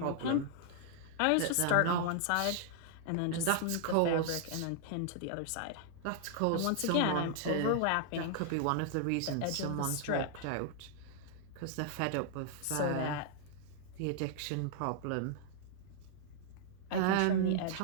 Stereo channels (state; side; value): different; both; correlation -0.01